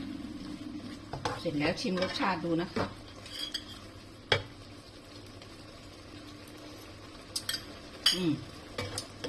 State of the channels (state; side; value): identical; both; correlation 1.00